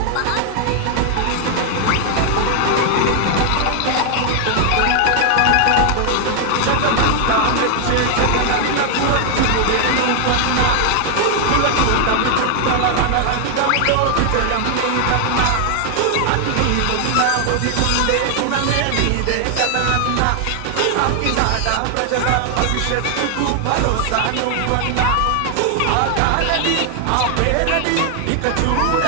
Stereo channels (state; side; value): different; both; correlation 0.00